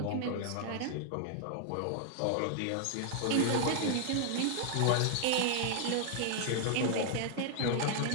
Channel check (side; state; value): both; different; correlation 0.00